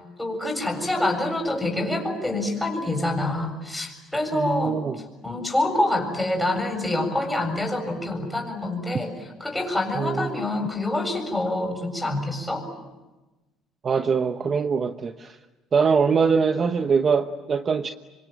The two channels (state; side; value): normal; both; correlation 0.81